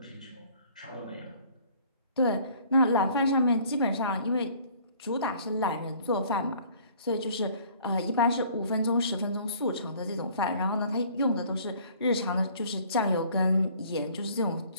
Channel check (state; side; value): inverted; both; correlation -0.54